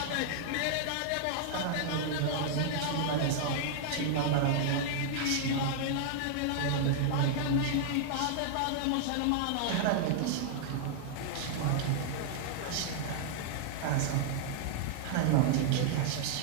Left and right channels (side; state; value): both; different; correlation -0.01